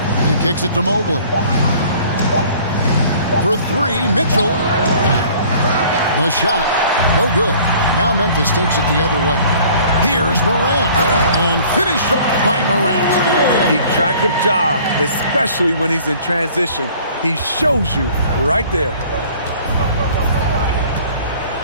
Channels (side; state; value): both; inverted; correlation -0.52